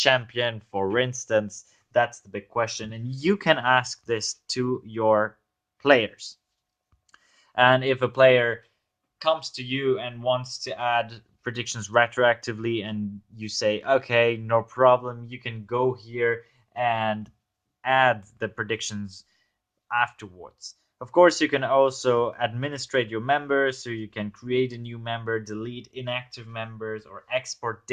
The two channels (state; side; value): identical; both; correlation 1.00